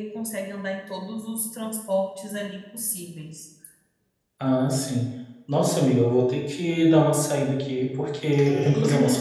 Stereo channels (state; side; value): identical; both; correlation 1.00